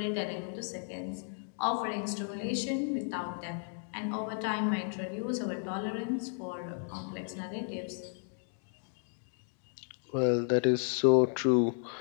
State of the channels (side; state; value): right; silent; 55 dB below the other